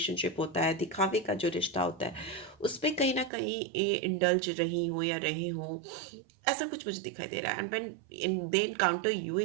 होता है, दिखावे का जो रिश्ता होता है, उस पे कहीं ना कहीं इंडल्ज रही हो या रहे हो, ऐसा कुछ मुझे दिखाई दे रहा है। And when they encounter you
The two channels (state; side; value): drops out; left; at 3.3 s